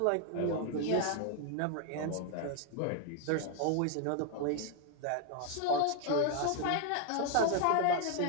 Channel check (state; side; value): different; both; correlation 0.01